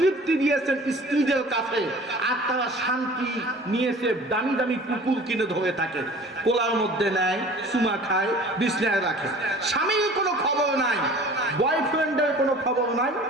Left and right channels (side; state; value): both; normal; correlation 0.45